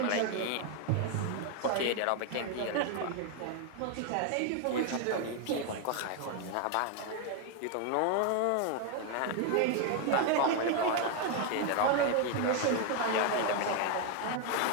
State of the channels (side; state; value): both; different; correlation 0.01